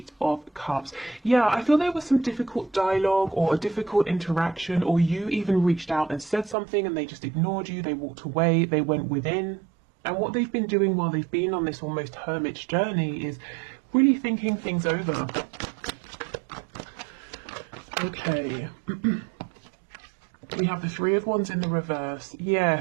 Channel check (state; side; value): drops out; left; at 6.6 s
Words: of Cups. Yeah, I feel there was some difficult dialogue or a difficult interaction, or you even reached out and said something and they just ignored you, they walked away, they went within. And what they've been doing while they've been on this almost hermit's journey is really thinking things over. Okay. We have the 3 of Wands in the reverse.